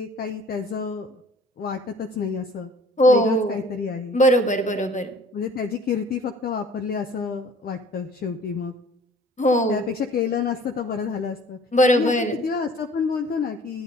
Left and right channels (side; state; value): both; normal; correlation 0.52